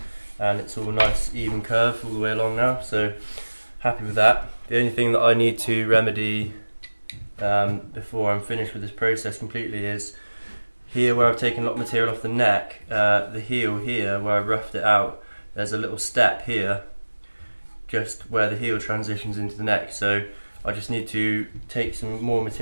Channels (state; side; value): inverted; both; correlation -1.00